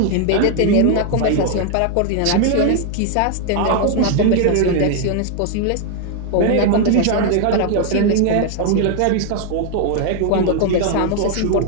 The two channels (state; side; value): different; both; correlation 0.00